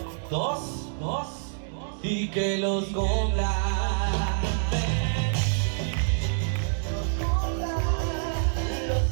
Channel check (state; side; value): silent; left; digital silence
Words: Dos, y que los cumpla.